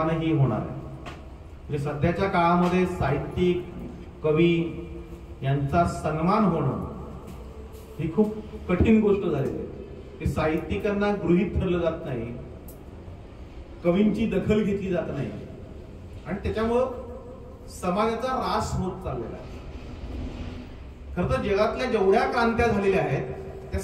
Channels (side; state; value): both; identical; correlation 1.00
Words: होणार आहे। म्हणजे सध्याच्या काळामध्ये साहित्यिक कवी यांचा सन्मान होणं ही खूप कठीण गोष्ट झालेली आहे की साहित्यिकांना गृहीत धरलं जात नाही, कवींची दखल घेतली जात नाही आणि त्याच्यामुळं समाजाचा ऱ्हास होत चाललेला आहे। खरं तर जगातल्या जेवढ्या क्रांत्या झालेल्या आहेत त्या